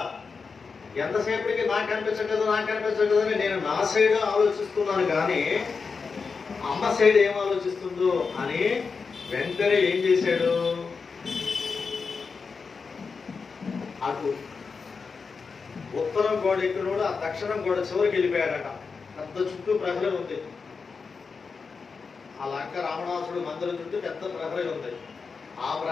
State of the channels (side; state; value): right; quieter; 5.0 dB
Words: ఎంతసేపటికి నాకు అనిపించట్లేదు అని నేను నా సైడ్ ఆలోచిస్తున్నాను, కానీ అమ్మ సైడ్ ఏం ఆలోచిస్తుందో అని వెంటనే ఏం చేశాడు, అటు ఉత్తరం గోడ ఎక్కినోడు ఆ దక్షిణం గోడ చివరికి వెళ్ళిపోయాడట. పెద్ద చుట్టూ ప్రహరీ ఉంది. ఆ లంక రావణాసుడు మందిరం చుట్టూ పెద్ద ప్రహరీ ఉంది. ఆ